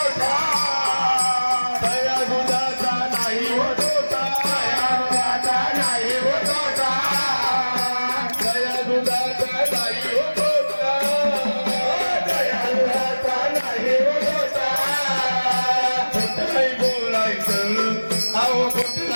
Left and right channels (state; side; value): inverted; both; correlation -1.00